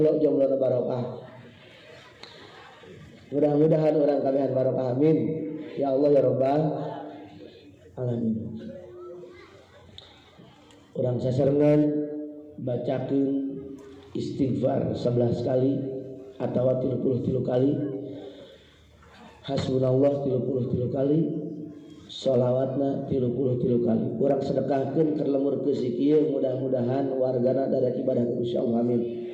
barokah. Mudah-mudahan urang kabehan barokah amin. Ya Allah ya Rabbal alamin. Urang sasarengan bacakeun istighfar 11 kali atawa 33 kali, hasbunallah 33 kali, sholawatna 33 kali. Urang sedekahkeun keur lemur ke sikieu, mudah-mudahan wargana dadak ibadah ku Gusti Allah amin.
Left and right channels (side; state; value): both; identical; correlation 1.00